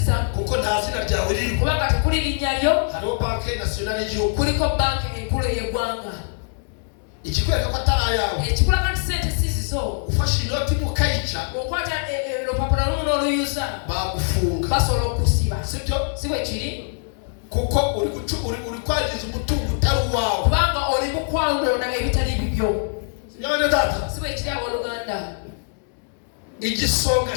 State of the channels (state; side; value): silent; right; digital silence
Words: za kuko nta zina ryawe riri. Kubanga tekuli linnya lyo. Hariho banki nasiyonali y'igihugu. Kuliko banki enkulu y'eggwanga. Ikikwereka ko atari ayawe. Ekikulaga nti sente si zizo. Ufashe inoti mukayica. Okwata olupapula lumu n'oluyuza. Bagufunga. Basobola okusiba. Sibyo? Si bwe kiri. Kuko uri kwangiza umutungo utari uwawe. Kubanga oli mu kwanona ebitali bibyo. Nyabane data. Si bwe kiri abooluganda. Igisonga